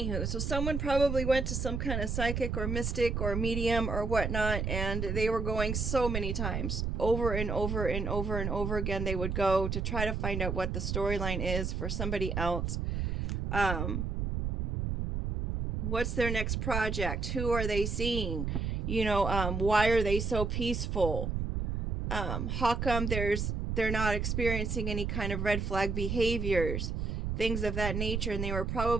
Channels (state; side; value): noise; right; rumble, 1 dB below the sound